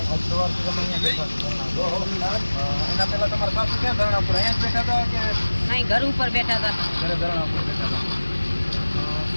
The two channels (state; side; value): inverted; both; correlation -1.00